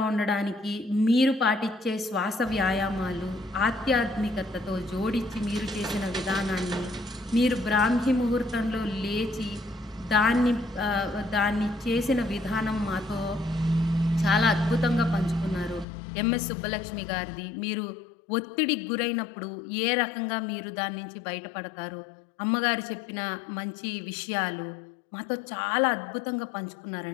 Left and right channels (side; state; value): right; drops out; at 15.9 s